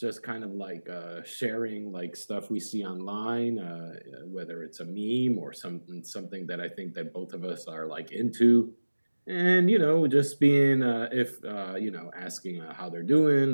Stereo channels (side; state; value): both; inverted; correlation -1.00